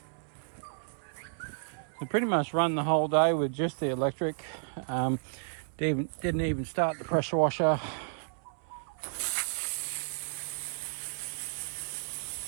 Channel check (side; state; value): left; silent; 56 dB below the other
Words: We pretty much run the whole day with just the electric. Didn't even start the pressure washer.